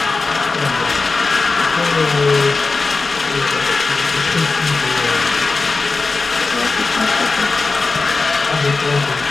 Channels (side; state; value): right; quieter; 3.9 dB